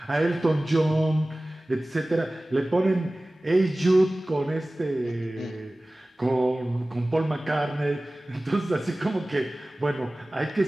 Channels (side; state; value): both; normal; correlation 0.98